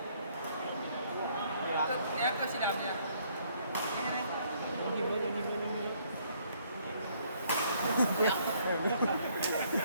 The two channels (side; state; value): both; inverted; correlation -0.66